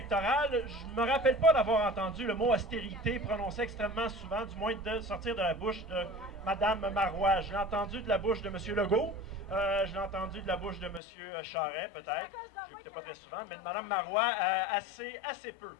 je ne me rappelle pas d'avoir entendu le mot austérité prononcé extrêmement souvent, du moins de sortir de la bouche de Mme Marois. Je l'ai entendu de la bouche de M. Legault. Je l'ai entendu de la bouche de M. Charest, peut-être. Je l'écoutais pas très souvent, mais de Mme Marois, assez peu.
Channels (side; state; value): right; drops out; at 11.0 s